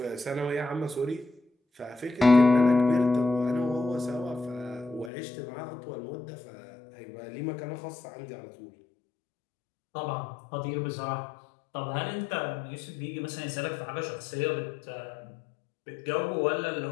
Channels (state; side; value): drops out; right; at 5.1 s